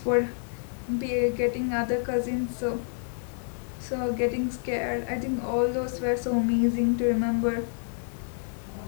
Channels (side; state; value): right; silent; 59 dB below the other